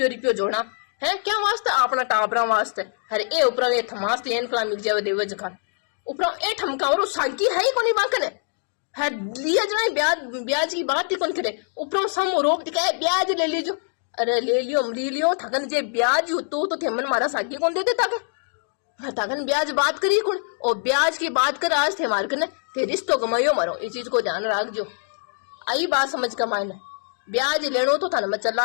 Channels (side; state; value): right; silent; 58 dB below the other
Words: जोड़ा है क्या वास्ते अपना टाबरा वास्ते अरे ए ऊपर ये थमास एन कला मिल जावे देवे जखान ऊपर ए ठमका और सागी है ही कोनी बाकने है लिया जना ब्याज की बात ही कौन करे ऊपर सम रोक दिखाए ब्याज ले लीजो अरे ले लियो थकन जे ब्याज तो थे मन मारा सागी कौन दे देता के थकन ब्याज बात करी कौन और ब्याज की बात कर आज थे मार करने थे रिश्तो कमाइयो मारो इस चीज को ध्यान रख जो आई बात समझ का मायने ब्याज लेनो तो था ना मैं